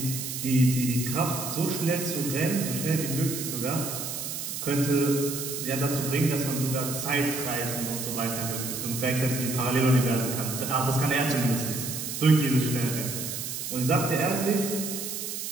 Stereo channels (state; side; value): noise; right; hiss, 5 dB below the sound